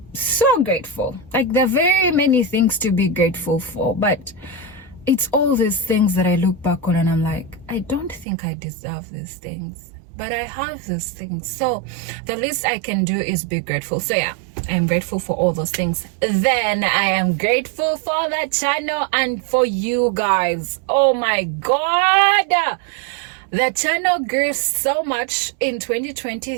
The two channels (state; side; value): drops out; left; at 8.2 s